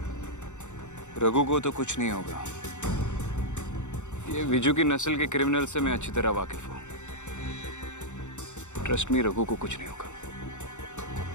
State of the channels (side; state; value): right; late; 0.84 ms